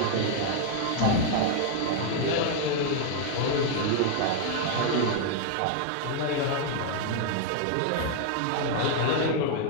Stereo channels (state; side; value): different; both; correlation 0.00